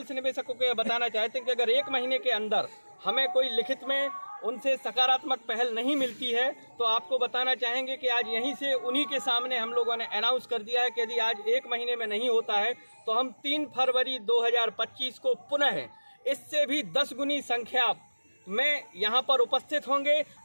निवेशकों को यह बताना चाहते हैं कि अगर 1 महीने के अंदर हमें कोई लिखित में उनसे सकारात्मक पहल नहीं मिलती है तो आपको बताना चाहेंगे कि आज यहीं से उन्हीं के सामने हम लोगों ने अनाउंस कर दिया है कि यदि आज 1 महीने में नहीं होता है तो हम 3 फरवरी 2025 को पुनः इससे भी 10 गुनी संख्या में यहाँ पर उपस्थित होंगे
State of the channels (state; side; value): inverted; both; correlation -1.00